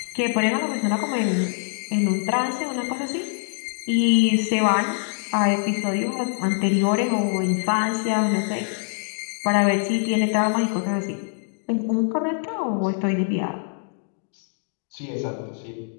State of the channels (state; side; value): silent; right; digital silence